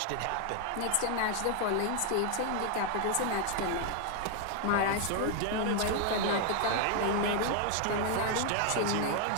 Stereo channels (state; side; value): different; both; correlation 0.00